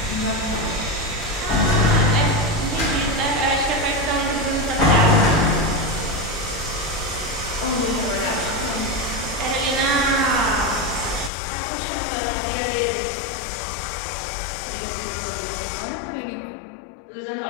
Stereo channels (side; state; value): right; drops out; at 11.3 s